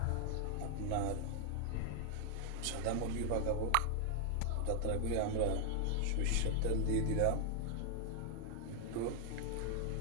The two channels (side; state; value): both; different; correlation 0.00